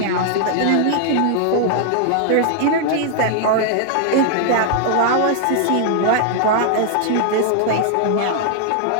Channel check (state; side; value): different; both; correlation 0.00